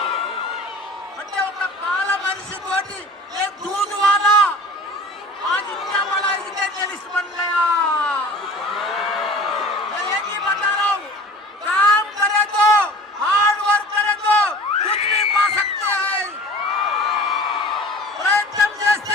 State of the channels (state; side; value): normal; both; correlation 0.42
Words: అంటే ఒక పాల మనిషి తోటి ఏ दूध वाला आज इतना बड़ा एजुकेशनिस्ट बन गया. मैं एक ही बता रहा हूँ, काम करे तो, हार्ड वर्क करे तो कुछ भी पा सकते हैं. ప్రయత్నం